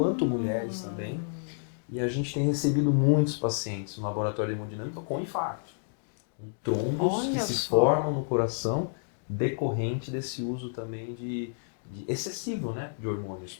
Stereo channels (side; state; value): right; silent; digital silence